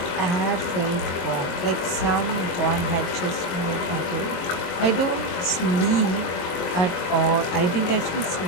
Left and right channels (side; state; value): right; late; 22 ms